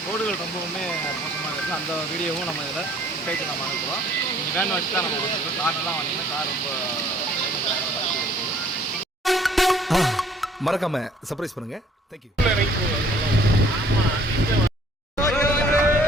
ரோடுகள் ரொம்பவுமே மோசமாக இருக்குது. அந்த வீடியோவும் நம்ம இதில் கைட்டு நம்ம அனுப்புகிறோம். நீங்கள் வேன் வச்சு தான் நம்ம வந்துருக்கோம். கார்லாம் வந்தீங்கன்னா கார் ரொம்ப மறக்காம சர்ப்ரைஸ் பண்ணுங்க. தேங்க்யூ.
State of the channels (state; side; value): normal; both; correlation 0.58